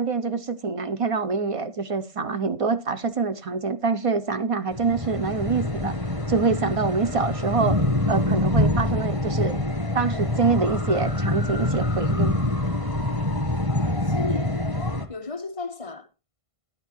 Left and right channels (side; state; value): left; late; 1.5 ms